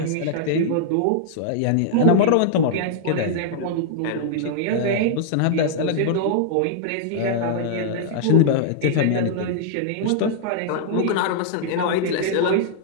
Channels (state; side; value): different; both; correlation -0.01